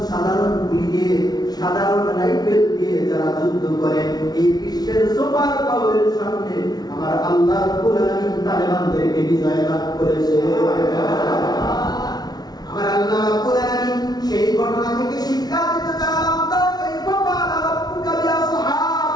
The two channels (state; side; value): late; right; 0.19 ms